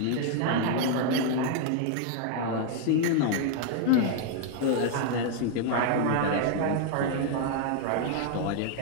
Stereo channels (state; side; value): different; both; correlation 0.00